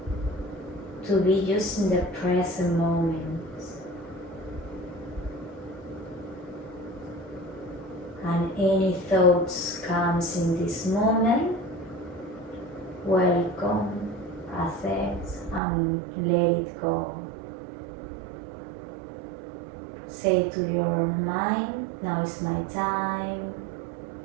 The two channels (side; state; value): left; drops out; at 15.6 s